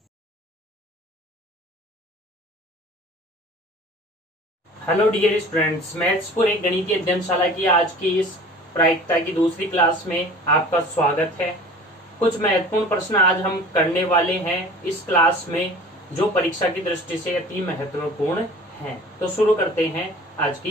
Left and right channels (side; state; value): both; normal; correlation 0.44